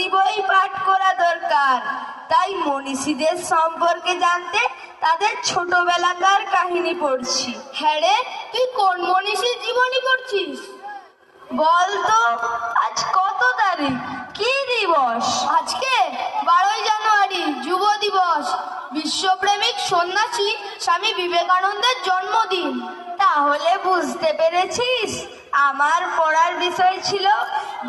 বই পাঠ করা দরকার। তাই মনীষীদের সম্পর্কে জানতে তাদের ছোটবেলাকার কাহিনী পড়ছি। হ্যাঁ রে, তুই কোন মনীষীর জীবনী পড়ছিস? বলতো, আজ কত তারিখ? কি দিবস? আজকে 12ই জানুয়ারি, যুব দিবস। বিশ্বপ্রেমিক সন্ন্যাসী স্বামী বিবেকানন্দের জন্মদিন। তাহলে বুঝতে পেরেছিস, আমার পড়ার বিষয় ছিল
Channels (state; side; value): identical; both; correlation 1.00